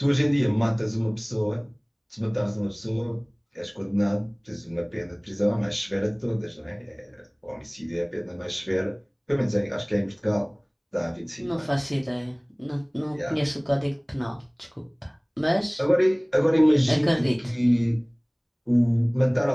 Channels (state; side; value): identical; both; correlation 1.00